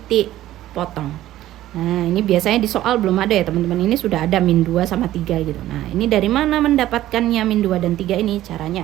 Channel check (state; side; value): quieter; left; 14.2 dB